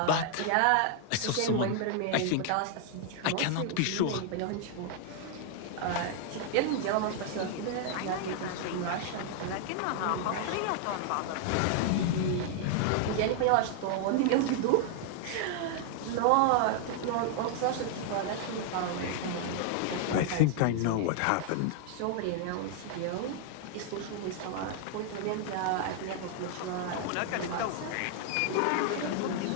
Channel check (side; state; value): both; different; correlation 0.00